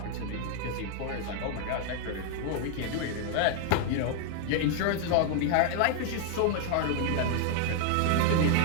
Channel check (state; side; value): different; both; correlation 0.00